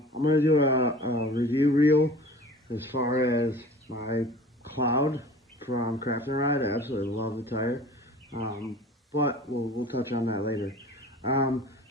going to do a review reel as far as my Cloud from Craft and Ride. I absolutely love the tire, but we'll touch on that later.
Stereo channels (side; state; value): both; normal; correlation 0.42